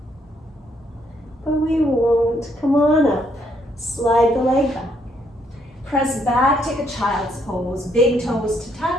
but we won't. Come on up. Slide the leg back. Press back, take a child's pose. Big toes to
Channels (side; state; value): both; normal; correlation 0.71